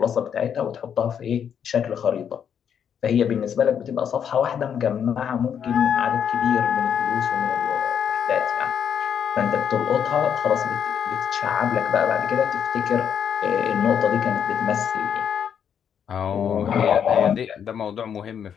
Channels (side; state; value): right; quieter; 8.2 dB